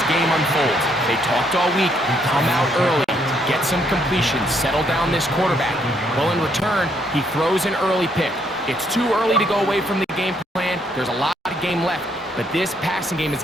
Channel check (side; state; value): both; normal; correlation 0.71